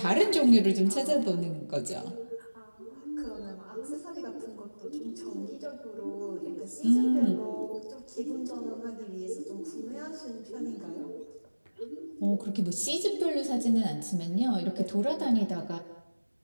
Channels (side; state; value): both; inverted; correlation -1.00